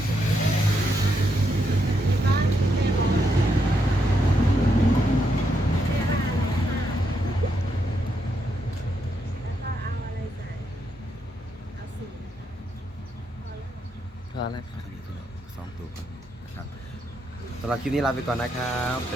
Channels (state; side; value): normal; both; correlation 0.79